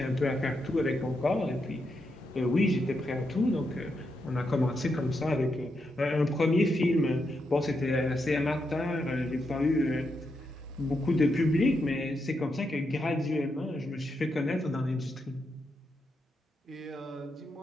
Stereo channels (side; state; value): both; normal; correlation 0.83